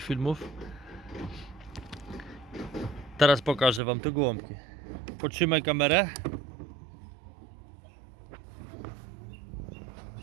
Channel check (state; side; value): drops out; left; at 3.8 s